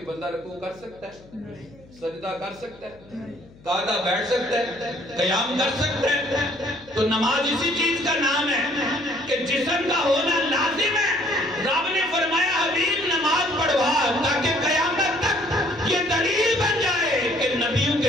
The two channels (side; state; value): left; noise; hum, 25 dB below the sound